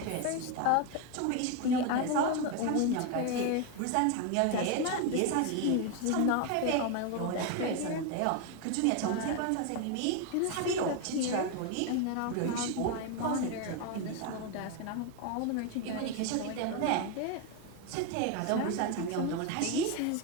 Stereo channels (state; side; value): different; both; correlation 0.02